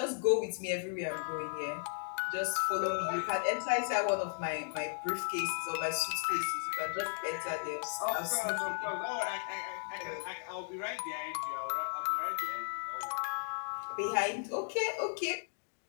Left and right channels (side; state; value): right; silent; digital silence